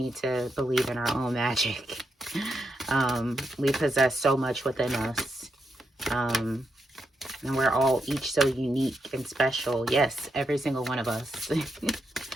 to believe in our own magic. We possess so much within us, and we're all each so unique and special. Yes, every single one of us.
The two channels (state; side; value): normal; both; correlation 0.83